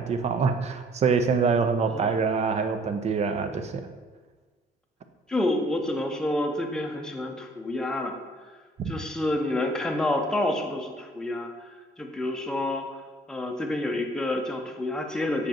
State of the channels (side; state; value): both; normal; correlation 0.58